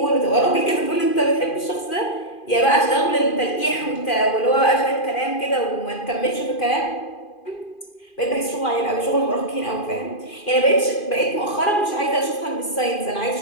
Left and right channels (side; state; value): right; late; 2.5 ms